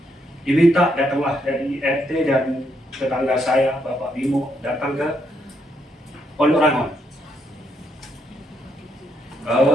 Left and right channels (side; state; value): both; normal; correlation 0.76